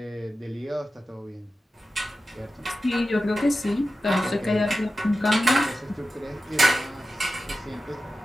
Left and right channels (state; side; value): normal; both; correlation 0.93